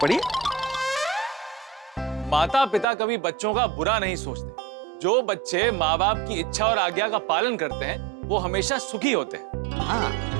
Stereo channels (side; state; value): left; drops out; at 2.9 s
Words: पढ़िए। माता पिता कभी बच्चों का बुरा नहीं सोचते। जो बच्चे माँ बाप की इच्छा और आज्ञा का पालन करते हैं वो हमेशा सुखी होते हैं। हाँ,